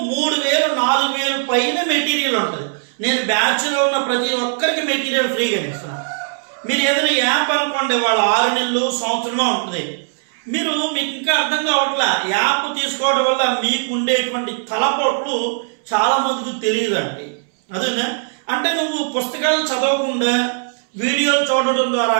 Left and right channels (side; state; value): left; silent; 66 dB below the other